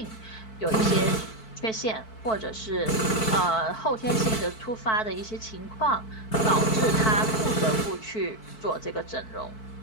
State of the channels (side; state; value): right; late; 4.6 ms